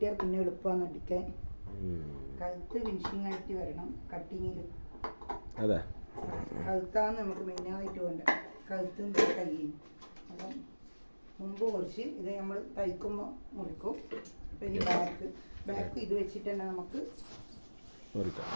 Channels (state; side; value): inverted; both; correlation -1.00